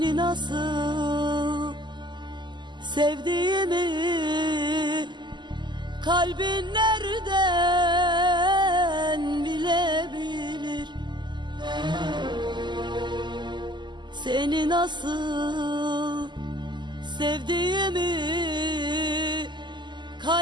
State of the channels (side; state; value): left; late; 0.22 ms